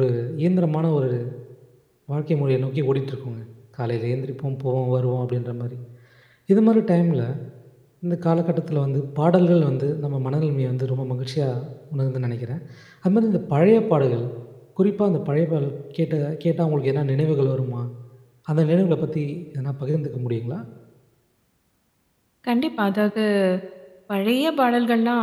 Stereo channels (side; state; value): both; identical; correlation 1.00